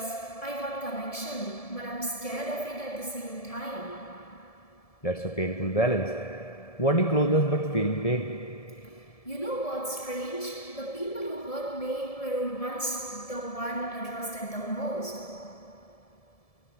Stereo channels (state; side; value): late; right; 1.7 ms